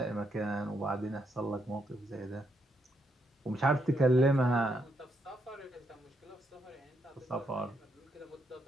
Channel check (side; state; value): both; normal; correlation 0.78